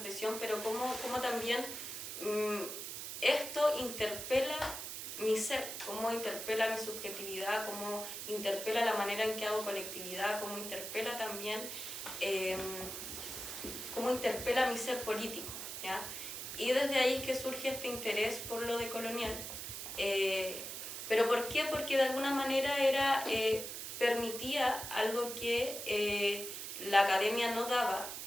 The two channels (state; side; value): noise; right; hiss, 7 dB below the sound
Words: pero cómo también esto interpela mi ser, cómo interpela mi subjetividad, cómo interpela la manera en que hago colectividad, cómo interpela también, cómo interpela mi ser político, ¿ya? Y desde ahí es que surge este interés por lo decolonial. ¿Pero por qué? Porque de alguna manera permitía algo que la academia no daba,